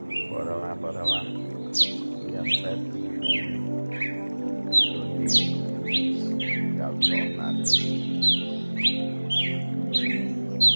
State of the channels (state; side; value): inverted; both; correlation -1.00